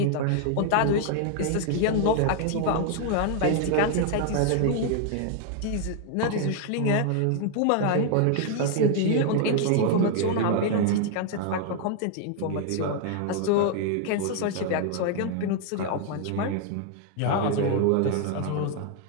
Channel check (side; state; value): both; different; correlation 0.00